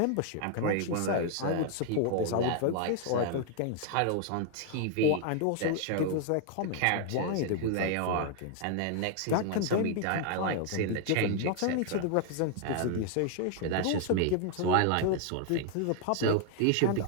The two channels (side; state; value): both; different; correlation 0.00